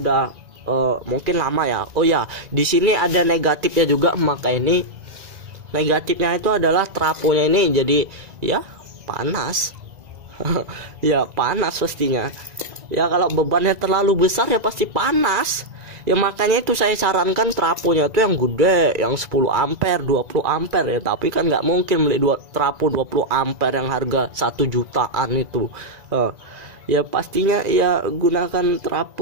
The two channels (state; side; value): late; left; 2.0 ms